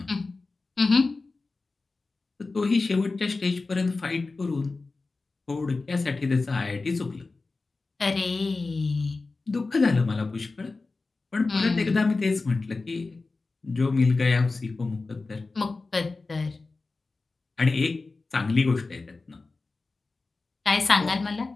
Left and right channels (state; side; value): quieter; right; 3.7 dB